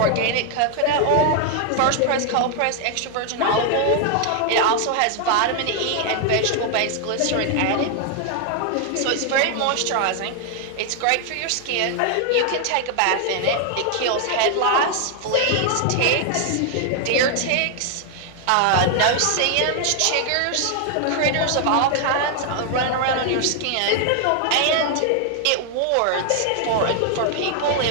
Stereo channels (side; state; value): both; different; correlation 0.00